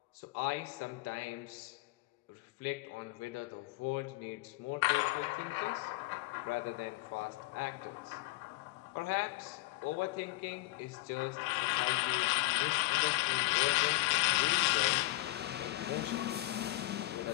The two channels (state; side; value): quieter; right; 20.4 dB